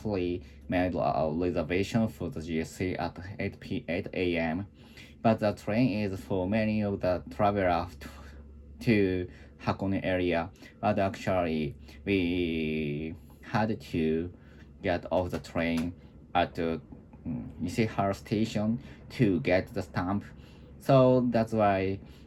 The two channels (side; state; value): both; identical; correlation 1.00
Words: made a reservation for the GSC at 8 a.m. But the train is for many of the travelers to Hakone area. But actually, we had to get off the train at the Ishihara station to get the stamp. So that's why